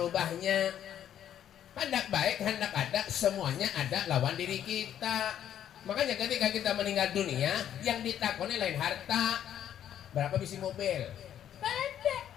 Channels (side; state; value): right; quieter; 10.3 dB